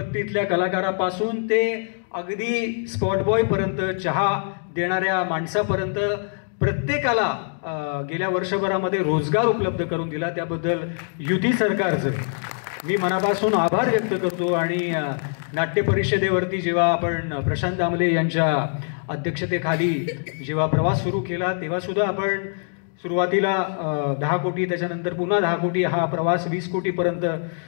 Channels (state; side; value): silent; right; digital silence